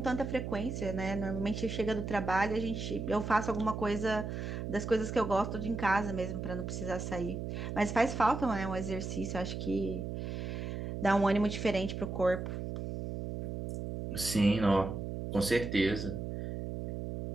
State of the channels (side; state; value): right; noise; hum, 5 dB below the sound